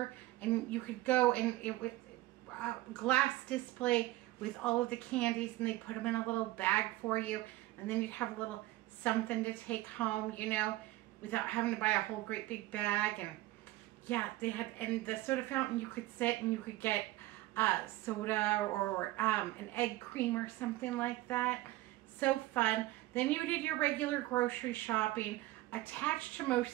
and you could go, and it was a glass display with all of the candies, and they put them in a little bag for you, and then you'd have a little something to take home, you know, without having to buy a whole great big bag. And yeah, they had, and the soda fountain, you could sit and you could get soda or an egg cream or something like that. So fun. Then you did your regular grocery shopping. Attached to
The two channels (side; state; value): left; quieter; 17.6 dB